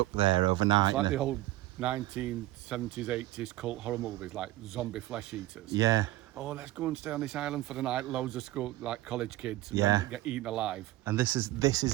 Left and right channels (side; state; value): left; quieter; 16.7 dB